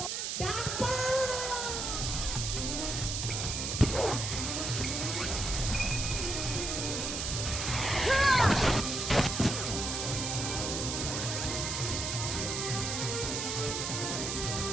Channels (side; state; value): right; noise; hiss, 2 dB below the sound